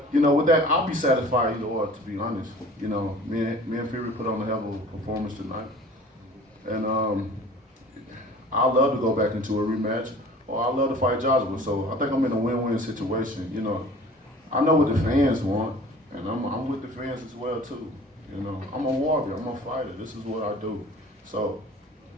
you know, with that, I'll be satisfied either or, to be honest. You know, me and Fury put on a hell of a performance tonight. And I'd love to go back into a rematch, or I'd love to fight Joshua. So I think I'm in a win-win situation. You know, I know what the fans want, and I'm with the fans as well, too. You know, I'm a warrior, I'm a fighter. This is what I do. So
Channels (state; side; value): normal; both; correlation 0.45